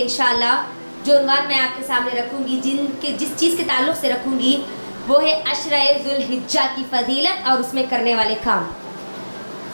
انشاءاللہ، جو عنوان میں آپ کے سامنے رکھوں گی، جس چیز کے تعلق سے رکھوں گی، وہ ہے عشرہ ذو الحجہ کی فضیلت اور اس میں کرنے والے کام۔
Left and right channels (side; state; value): both; inverted; correlation -1.00